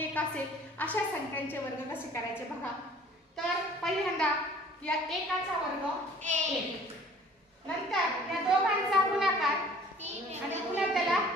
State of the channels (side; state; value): both; normal; correlation 0.51